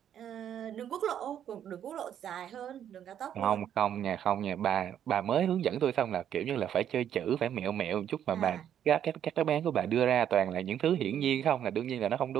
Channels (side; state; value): left; quieter; 9.8 dB